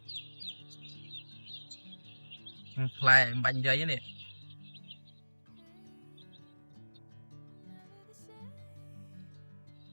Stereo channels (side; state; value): both; inverted; correlation -1.00